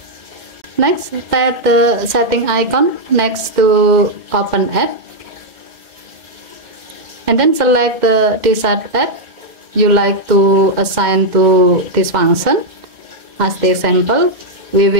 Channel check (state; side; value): late; left; 2.1 ms